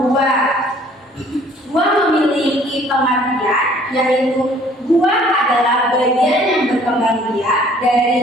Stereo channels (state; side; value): normal; both; correlation 0.56